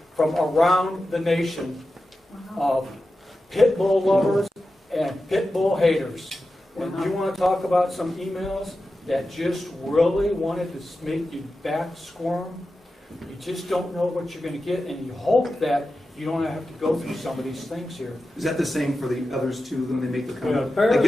from around the nation of pit bull lovers and pit bull haters. And you want to talk about some emails that just really wanted to make you back squirm? You just don't know what you're going to get, and you hope that you don't have to go through some of these things here. Is that the same for the others too, when they make the Yeah, comment? I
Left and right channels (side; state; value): both; normal; correlation 0.92